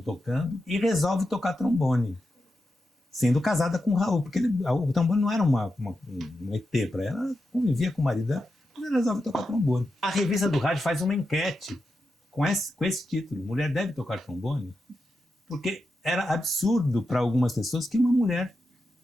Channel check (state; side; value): normal; both; correlation 0.88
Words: tocando e resolve tocar trombone, sendo casada com o Raul, porque o trombone não era um ET para ela, ela convivia com o marido dela, mas ela resolve tocar trombone. A Revista do Rádio faz uma enquete com esse título, Mulher Deve Tocar Trombone, porque era absurdo para algumas pessoas que uma mulher